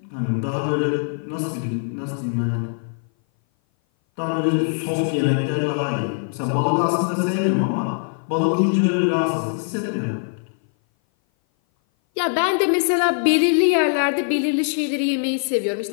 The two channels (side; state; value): right; silent; 58 dB below the other